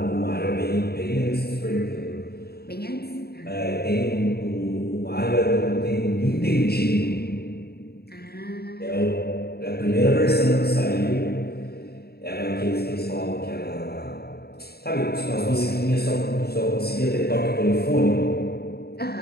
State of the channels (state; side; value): late; right; 0.46 ms